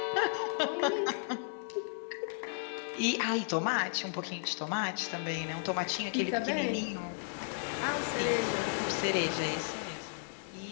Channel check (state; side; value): silent; right; digital silence